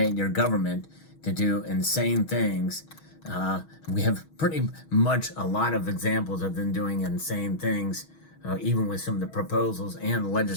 your government to do insane things. We have pretty much a lot of examples of them doing insane things, even with some of the proposals and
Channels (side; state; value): right; late; 6.3 ms